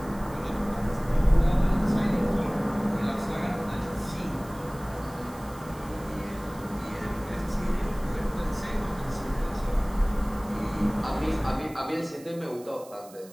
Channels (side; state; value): right; noise; hiss, 21 dB below the sound